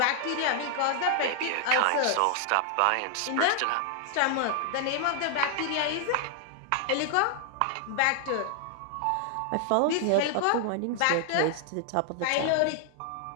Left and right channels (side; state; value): both; different; correlation 0.00